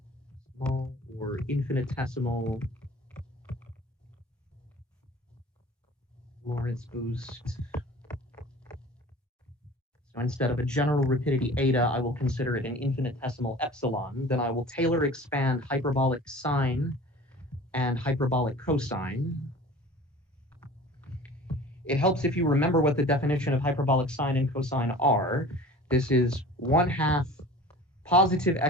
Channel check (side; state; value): both; normal; correlation 0.42